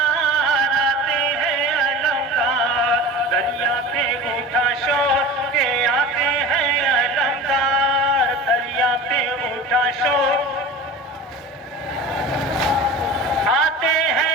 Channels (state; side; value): normal; both; correlation 0.34